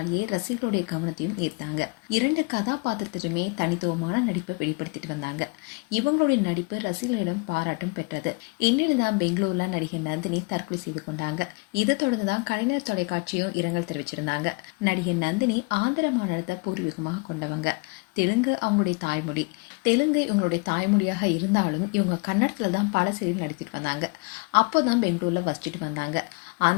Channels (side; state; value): right; quieter; 28.4 dB